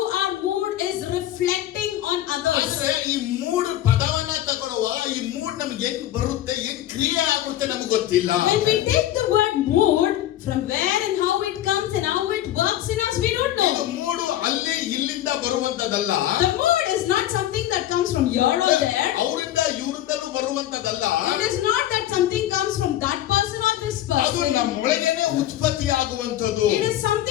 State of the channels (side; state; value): right; quieter; 13.0 dB